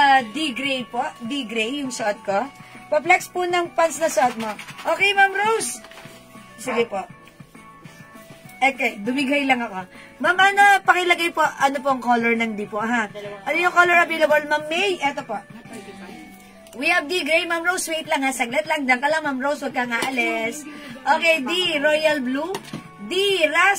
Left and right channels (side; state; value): both; identical; correlation 1.00